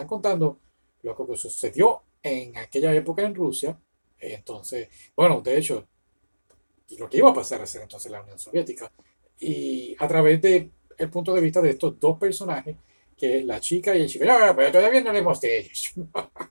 contando lo que sucedió en aquella época en Rusia. Entonces, bueno, de hecho, lo que iba a pasar a ser entonces la Unión Soviética. Y a través de el punto de vista de estos dos personajes, que es la chica y el chico. No, pero todavía no hablemos de ellos.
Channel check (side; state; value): both; inverted; correlation -1.00